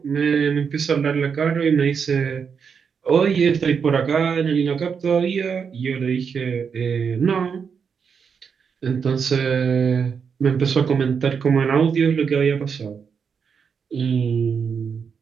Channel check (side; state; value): left; quieter; 6.4 dB